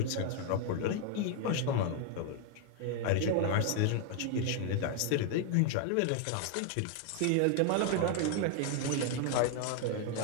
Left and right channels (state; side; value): different; both; correlation 0.00